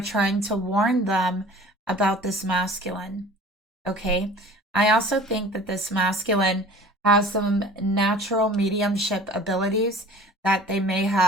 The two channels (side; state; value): both; normal; correlation 0.45